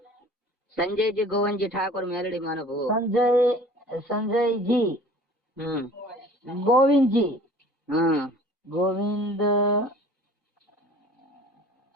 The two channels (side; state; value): both; normal; correlation 0.47